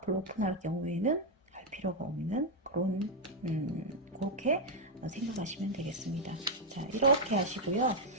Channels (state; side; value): normal; both; correlation 0.00